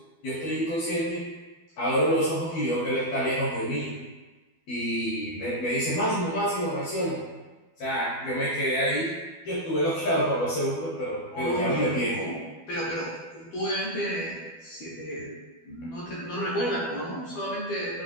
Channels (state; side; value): late; right; 12 ms